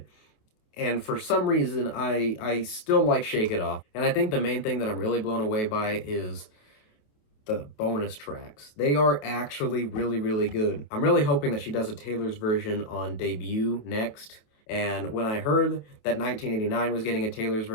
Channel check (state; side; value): late; right; 27 ms